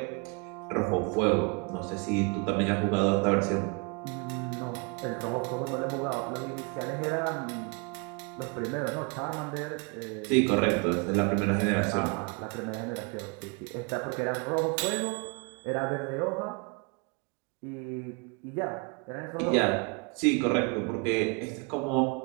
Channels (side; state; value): left; quieter; 32.5 dB